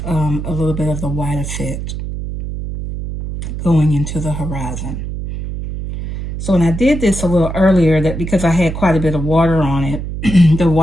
a little bit of the white effect going into the horizon. So when I did this a little earlier, that because I had quite a bit of water on it, the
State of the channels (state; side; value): noise; right; hum, 6 dB below the sound